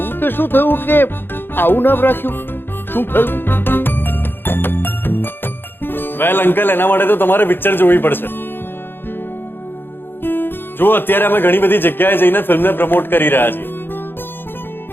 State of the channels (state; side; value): late; right; 0.10 ms